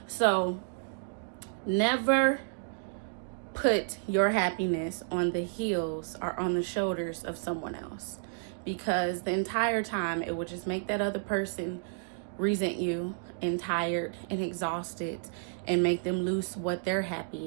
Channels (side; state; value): left; silent; digital silence